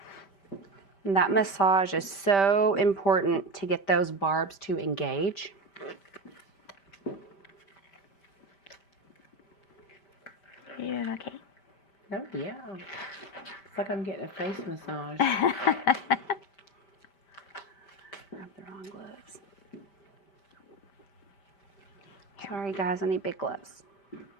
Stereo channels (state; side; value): late; right; 5.1 ms